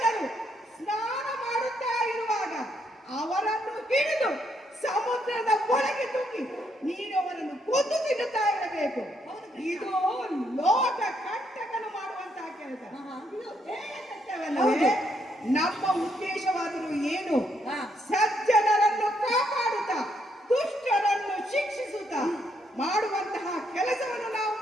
ಸ್ನಾನ ಮಾಡುತ್ತಾ ಇರುವಾಗ ಅವರನ್ನು ಹಿಡಿದು ಸಮುದ್ರದ ಒಳಗೆ ತೂಗಿ ನೀನು ಅವರನ್ನು ಕೊಂದು ತಿನ್ನುತ್ತಾ ಇರಬೇಕು. ಇದು ಲೋಕ ಕಂಟಕನು ಮಾಡುವಂತಹ ಕೆಲಸ. ಇದು ಹೇಯಕೃತ್ಯವಲ್ಲವೇ? ನಮ್ಮ ಉದ್ದೇಶವಾದರೂ ಏನು? ಸಜ್ಜನರನ್ನು ಕಾಪಾಡುತ್ತಾ ದುಷ್ಟರನ್ನು ಶಿಕ್ಷಿಸುತ್ತಾ ಮಾಡುವಂತಹ ಕೆಲಸವನ್ನು ನಾವು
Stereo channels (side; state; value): both; normal; correlation 0.74